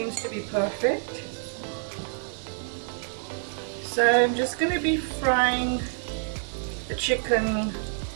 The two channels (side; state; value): left; silent; 60 dB below the other